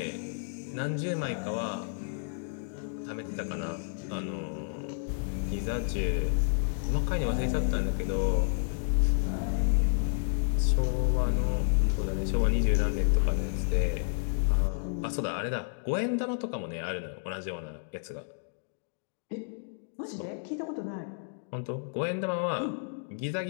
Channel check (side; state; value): right; silent; digital silence